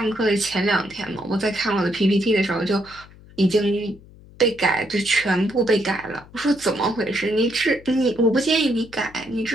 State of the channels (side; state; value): left; noise; hum, 22 dB below the sound